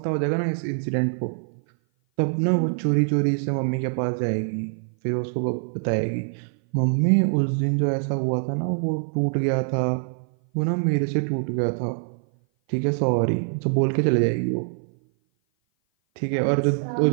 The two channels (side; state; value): left; silent; 57 dB below the other